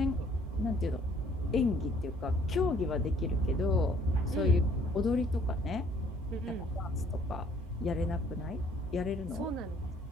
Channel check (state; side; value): normal; both; correlation 0.60